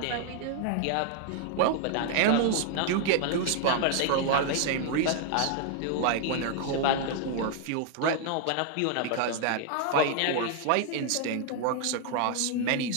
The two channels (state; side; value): different; both; correlation 0.00